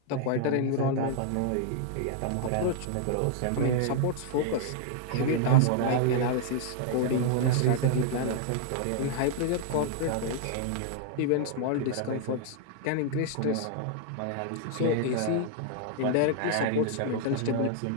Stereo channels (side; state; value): both; different; correlation 0.00